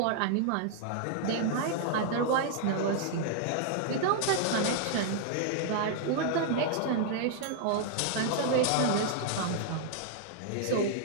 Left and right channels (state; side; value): different; both; correlation -0.01